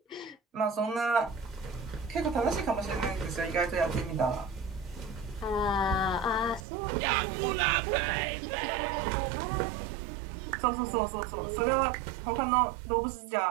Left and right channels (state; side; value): drops out; left; at 6.7 s